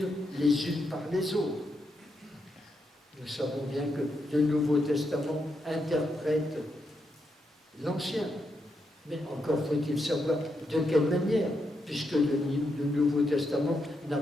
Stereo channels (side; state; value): both; normal; correlation 0.82